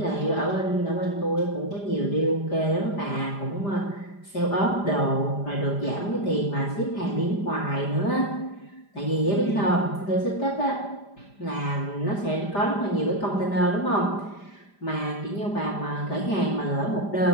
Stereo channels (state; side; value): late; right; 5.0 ms